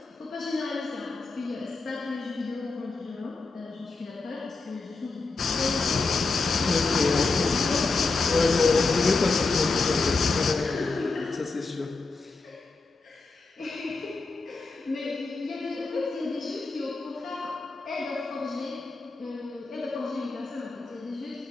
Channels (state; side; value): quieter; right; 3.9 dB